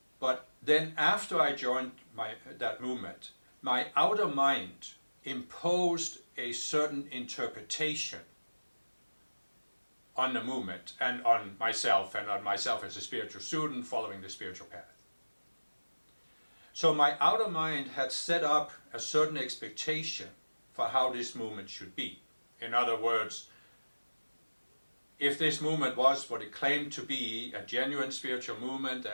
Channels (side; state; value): both; inverted; correlation -1.00